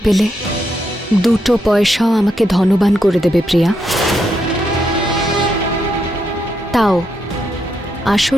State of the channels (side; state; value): both; normal; correlation 0.80